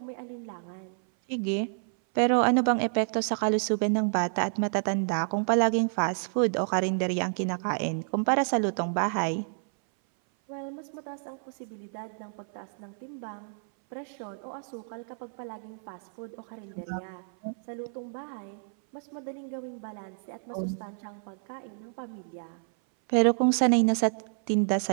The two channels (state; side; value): silent; left; 57 dB below the other